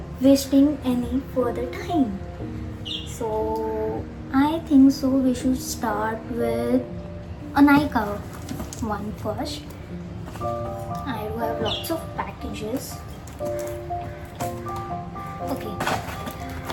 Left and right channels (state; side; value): identical; both; correlation 1.00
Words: wasting any further time. So I think so we should start with a Nykaa one first. I do have lots of packages. Okay.